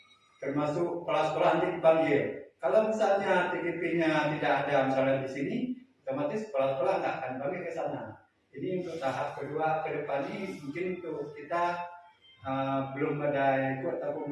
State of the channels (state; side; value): identical; both; correlation 1.00